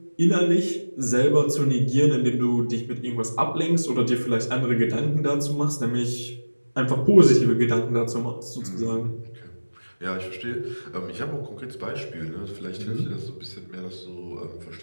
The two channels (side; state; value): both; inverted; correlation -1.00